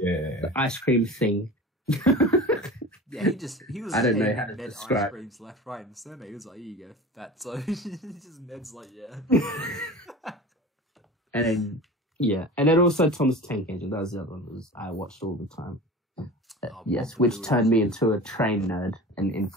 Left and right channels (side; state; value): both; normal; correlation 0.36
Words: ice cream thing. Yeah, he was I don't know how to describe ice creams left, right, and center. He was like, here you go, fat. So Ned's like, yeah. And then also Thomas Tank Engine. That was the other one I watched all the time. Yes, which turned me into a train nerd and